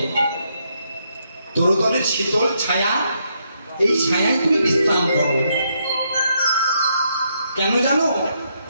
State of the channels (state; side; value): inverted; both; correlation -0.77